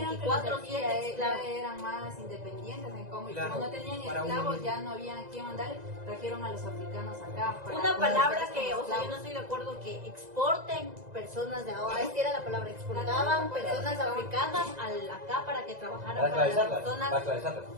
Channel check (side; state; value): left; late; 1.9 ms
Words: que los de aquí 24/7 ya esclavos. eran más independientes en cómo, y Claro, como no tenían para uno esclavos, mismo. ya no había a quién mandarle, trajeron a los africanos acá. para Una poder palabra hacer que, como o sea, yo no esclavos. estoy de acuerdo que exporten personas de ahora. Esta era la palabra, exportaban personas africanas acá para que trabajaran Para para las esclavizarlas. Para personas, esclavizarlas.